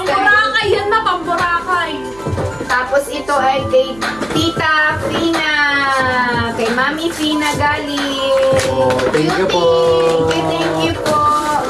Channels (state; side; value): noise; right; hum, 22 dB below the sound